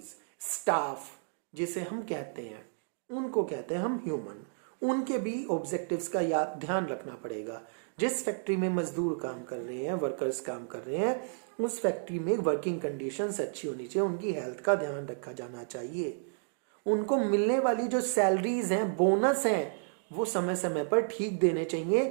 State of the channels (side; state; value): left; silent; digital silence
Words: स्टाफ जिसे हम कहते हैं, उनको कहते हैं हम ह्यूमन। उनके भी ऑब्जेक्टिव्स का याद ध्यान रखना पड़ेगा। जिस फैक्ट्री में मजदूर काम कर रहे हैं, वर्कर्स काम कर रहे हैं, उस फैक्ट्री में वर्किंग कंडीशंस अच्छी होनी चाहिए, उनकी हेल्थ का ध्यान रखा जाना चाहिए। उनको मिलने वाली जो सैलरीज हैं, बोनस हैं, वो समय समय पर ठीक देने